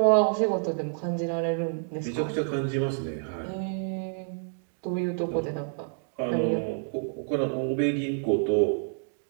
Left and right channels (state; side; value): silent; left; digital silence